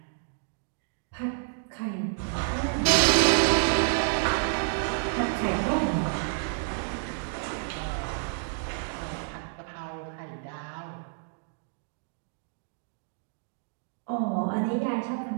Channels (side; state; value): left; silent; digital silence